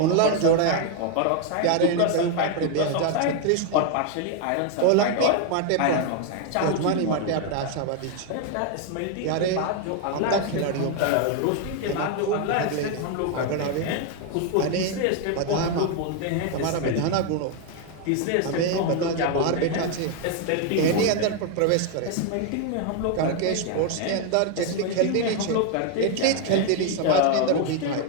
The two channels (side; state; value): both; different; correlation 0.01